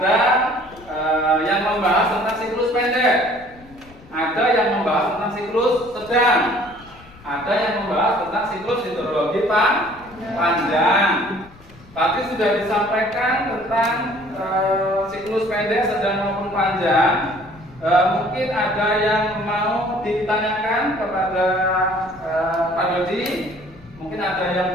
yang membahas tentang siklus pendek, ada yang membahas tentang siklus sedang, ada yang membahas tentang siklus hidrologi panjang. Tadi sudah disampaikan tentang siklus pendek, sedang maupun panjang. Mungkin ada yang mau ditanyakan kepada Pak Dodi. Mungkin ada yang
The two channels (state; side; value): noise; left; rumble, 23 dB below the sound